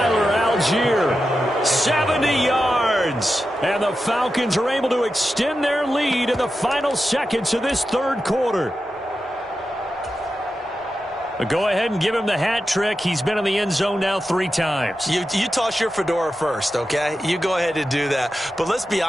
Algier, 70 yards. And the Falcons are able to extend their lead in the final seconds of this 3rd quarter. Go ahead and give him the hat trick. He's been in the end zone now 3 times. You toss your fedora first, okay? You go ahead and do that. But let's be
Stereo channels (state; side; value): normal; both; correlation 0.90